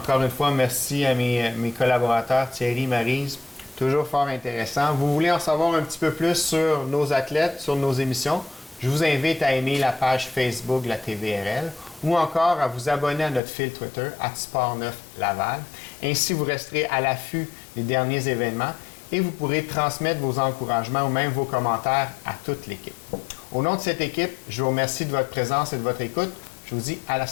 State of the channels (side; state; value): right; drops out; at 13.4 s